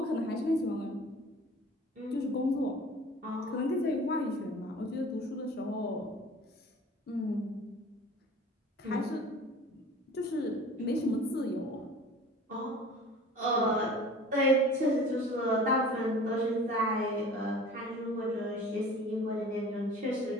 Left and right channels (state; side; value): normal; both; correlation 0.44